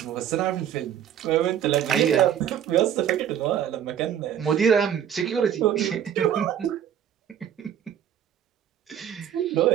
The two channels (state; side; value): quieter; left; 9.6 dB